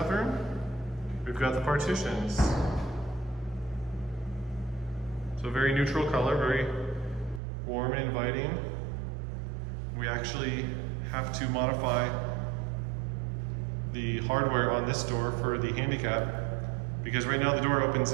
we've got the partitions. So very neutral color, very warm and inviting. We actually have to modify the hardware on this door for the handicap, because right now the door opens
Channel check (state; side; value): drops out; left; at 7.4 s